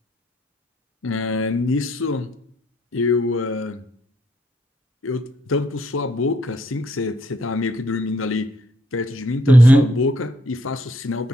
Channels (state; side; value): normal; both; correlation 0.69